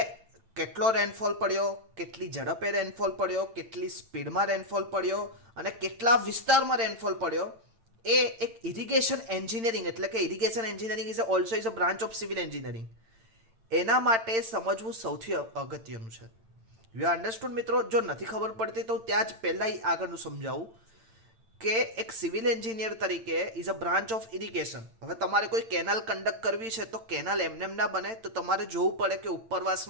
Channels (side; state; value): left; late; 8.9 ms